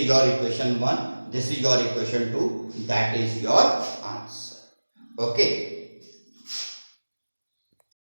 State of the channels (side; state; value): both; inverted; correlation -1.00